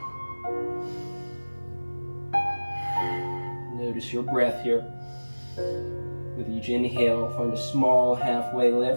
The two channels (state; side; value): inverted; both; correlation -1.00